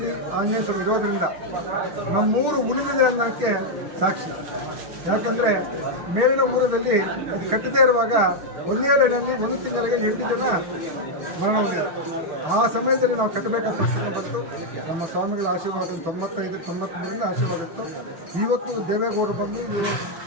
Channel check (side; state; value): left; late; 6.6 ms